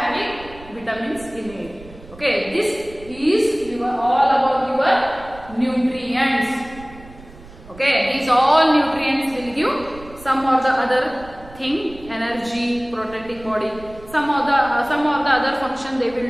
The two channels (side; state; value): right; noise; rumble, 19 dB below the sound